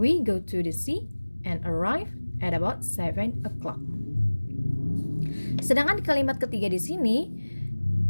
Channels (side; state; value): both; inverted; correlation -1.00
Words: go to the sea and arrive at about 7 o'clock. Sedangkan di kalimat ketiga di sini,